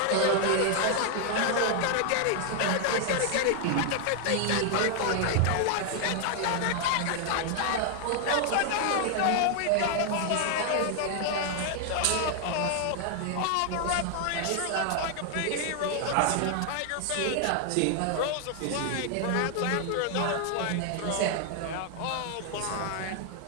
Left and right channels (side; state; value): both; different; correlation 0.00